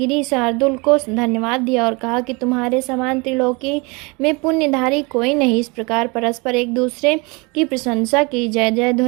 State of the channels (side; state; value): left; quieter; 28.1 dB